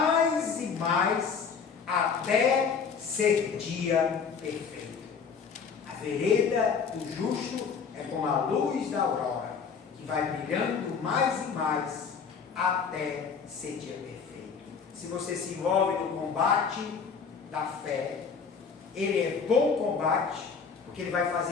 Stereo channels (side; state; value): right; quieter; 6.0 dB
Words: e mais até ser dia perfeito. A vereda do justo é como a luz da aurora, que vai brilhando mais e mais até ser dia perfeito. Se você se envolve no combate da fé, ele é bom combate, porque ele vai